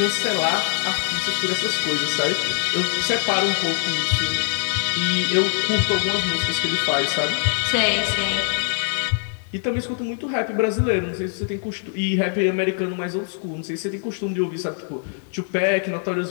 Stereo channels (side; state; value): right; silent; 59 dB below the other